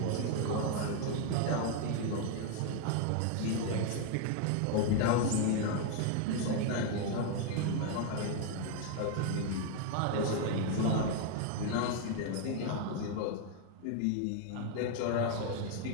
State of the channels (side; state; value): both; different; correlation 0.00